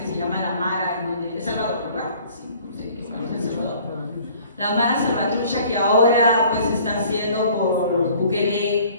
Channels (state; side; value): inverted; both; correlation -0.53